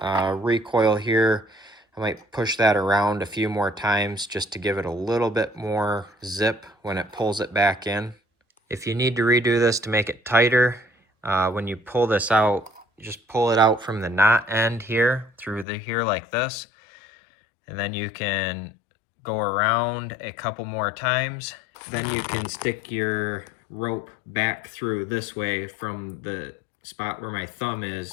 recoil here, I might push that around a few more times just to give it a little bit more zip when it pulls it back in. If you need to redo this to make it tighter, when you pull this out, just pull it out from the knot end here through here like this. And then you can go around a couple more times. Then you can stick your rope back through this way from the spot where my thumb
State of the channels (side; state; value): right; drops out; at 15.7 s